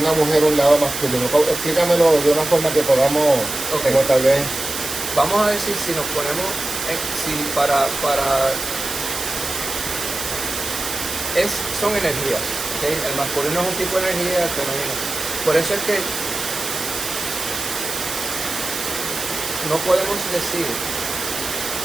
una mujer un lado masculino? Explícamelo de una forma que podamos, okay, como tal vez. Vamos a decir, si nos ponemos, son energías, ¿okay? El masculino es un tipo de energía, el femenino. Por eso es que no podemos decir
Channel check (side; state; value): right; noise; hiss, 6 dB below the sound